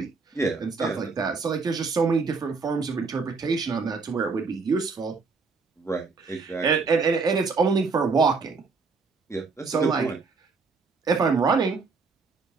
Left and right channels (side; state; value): left; quieter; 4.5 dB